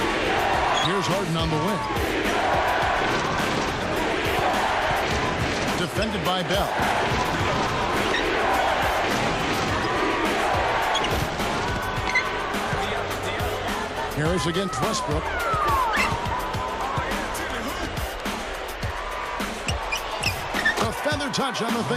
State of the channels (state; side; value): identical; both; correlation 1.00